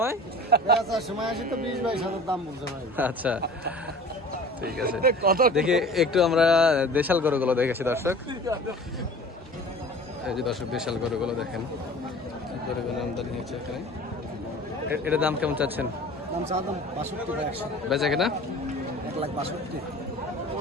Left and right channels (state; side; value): normal; both; correlation 0.42